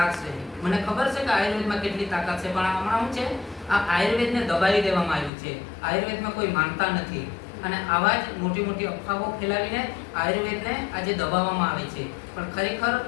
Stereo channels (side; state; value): right; drops out; at 5.3 s